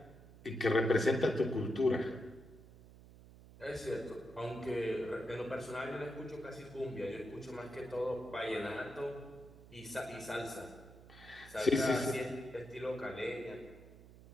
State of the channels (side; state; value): right; noise; hum, 19 dB below the sound